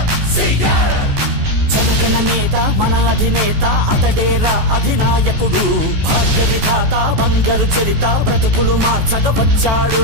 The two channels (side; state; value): left; late; 14 ms